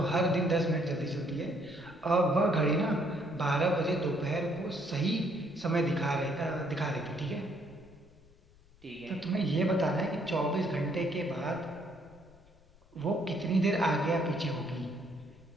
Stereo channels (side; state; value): left; noise; rumble, 27 dB below the sound